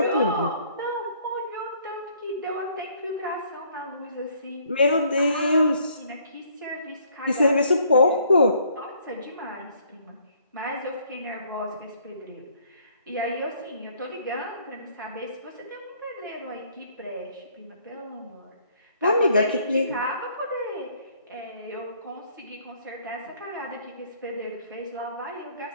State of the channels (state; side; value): inverted; both; correlation -0.63